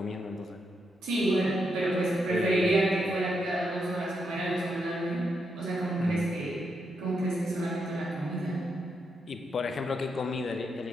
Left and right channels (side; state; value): both; normal; correlation 0.81